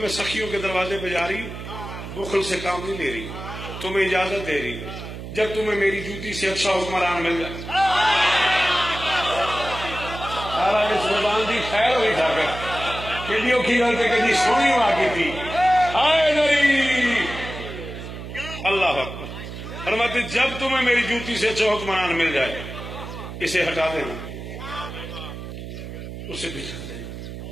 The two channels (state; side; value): noise; right; hum, 10 dB below the sound